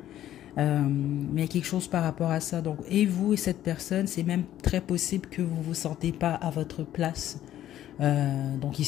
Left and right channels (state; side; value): quieter; right; 12.3 dB